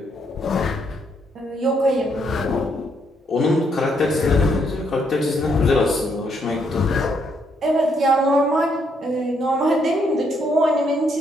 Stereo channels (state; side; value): normal; both; correlation 0.74